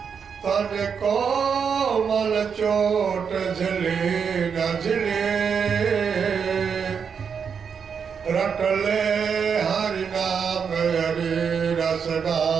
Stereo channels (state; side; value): quieter; left; 6.6 dB